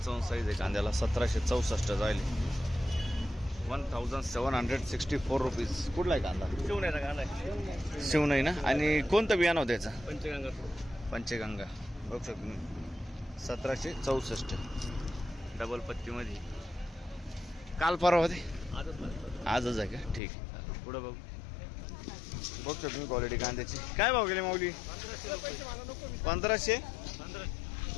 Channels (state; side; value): drops out; right; at 20.2 s